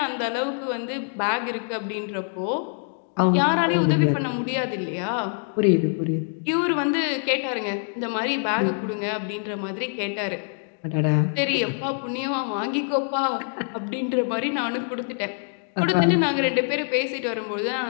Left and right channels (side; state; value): right; silent; 57 dB below the other